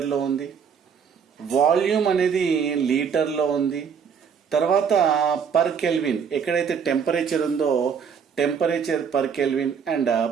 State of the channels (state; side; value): quieter; left; 6.8 dB